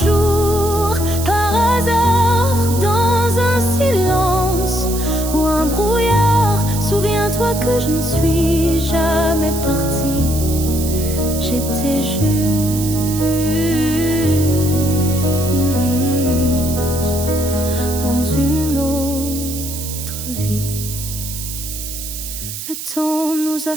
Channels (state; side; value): noise; right; hiss, 8 dB below the sound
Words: jour par hasard dans un silence ou un brouillard, souviens-toi Souviens-toi que je ne suis jamais partie. J'étais juste dans une autre vie. Le temps nous a